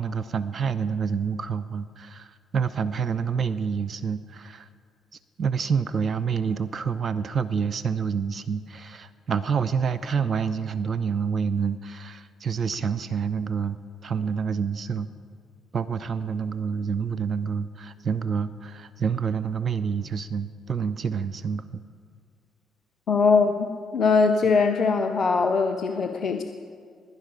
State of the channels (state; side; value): normal; both; correlation 0.71